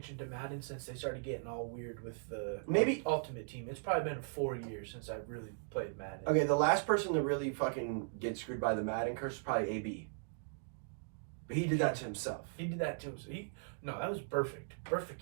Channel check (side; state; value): left; silent; digital silence